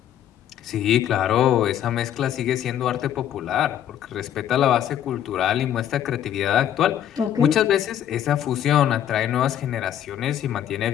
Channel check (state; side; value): quieter; right; 10.6 dB